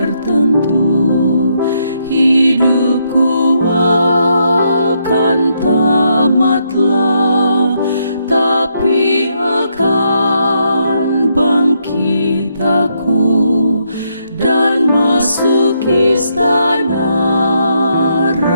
hidupku akan tamatlah, tapi akan bangkit aku dan masuk istana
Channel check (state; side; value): inverted; both; correlation -0.77